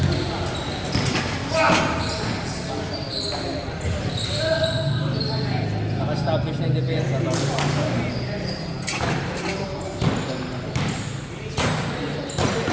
Naka-establish na yung depensa.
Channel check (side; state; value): both; identical; correlation 1.00